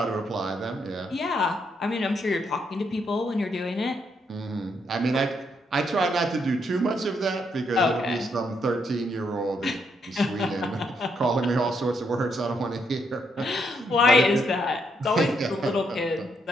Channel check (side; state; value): both; normal; correlation 0.76